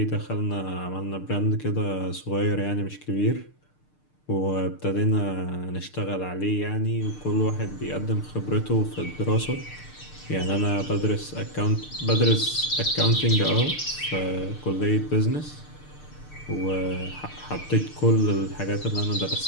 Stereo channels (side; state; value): right; late; 6.6 ms